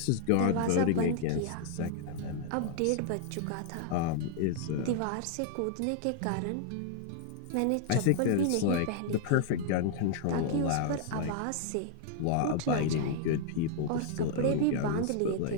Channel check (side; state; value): both; different; correlation 0.00